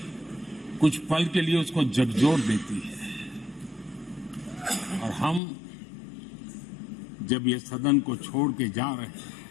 कुछ पल के लिए उसको झकझोर देती है। और हम जब ये सदन को छोड़ के जा रहे हैं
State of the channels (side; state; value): right; drops out; at 5.4 s